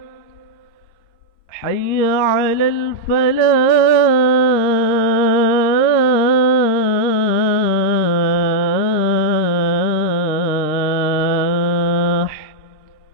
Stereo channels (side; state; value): right; late; 12 ms